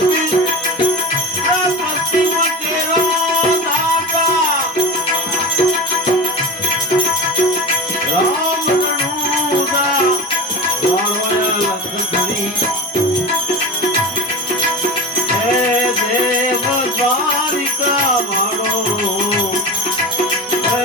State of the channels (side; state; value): both; normal; correlation 0.28